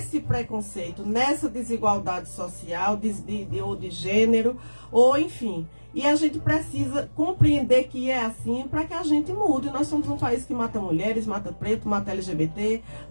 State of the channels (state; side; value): inverted; both; correlation -1.00